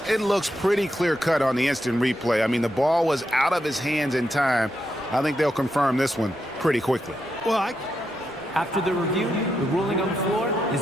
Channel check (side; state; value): both; normal; correlation 0.84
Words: looks pretty clear-cut on the instant replay. I mean, the ball was out of his hands in time. I think they'll confirm this one pretty quickly. Well, After the review, the ruling on the floor